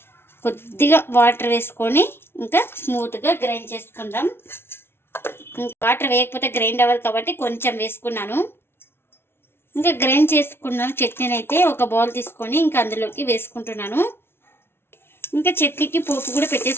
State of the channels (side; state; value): right; late; 0.12 ms